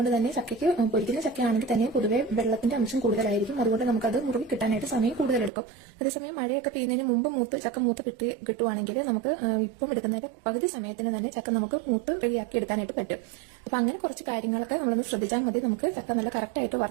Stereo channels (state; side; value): drops out; left; at 5.5 s